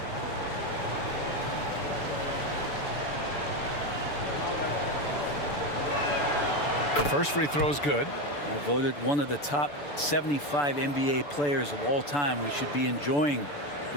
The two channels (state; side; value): late; right; 6.9 ms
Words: First free throw is good. I voted one of the top 75 NBA players of all time. We should be enjoying